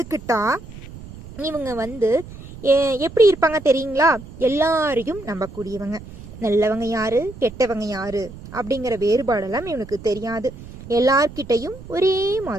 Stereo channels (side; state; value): right; noise; rumble, 15 dB below the sound